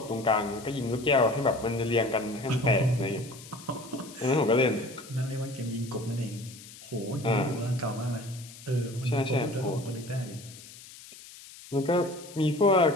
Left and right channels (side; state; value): left; noise; hiss, 18 dB below the sound